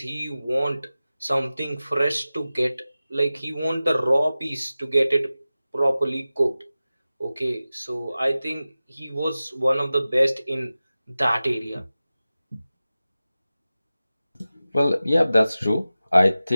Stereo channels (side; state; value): both; inverted; correlation -0.96